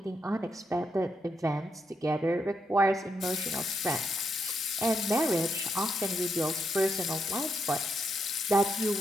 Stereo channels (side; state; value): both; normal; correlation 0.81